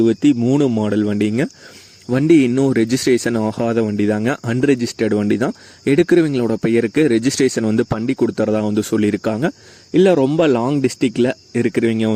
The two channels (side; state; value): both; identical; correlation 1.00